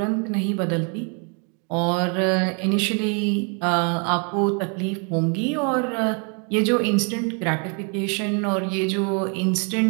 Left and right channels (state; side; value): quieter; left; 37.7 dB